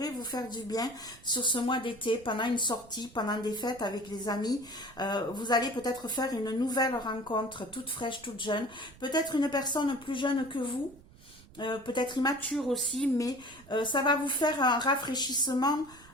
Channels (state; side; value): noise; right; rumble, 23 dB below the sound